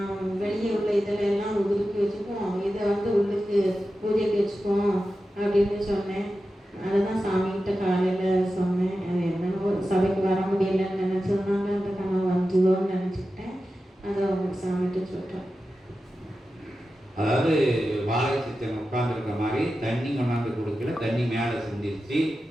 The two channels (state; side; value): normal; both; correlation 0.92